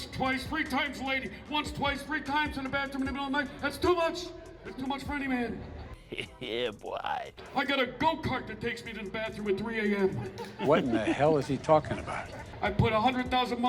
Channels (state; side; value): identical; both; correlation 1.00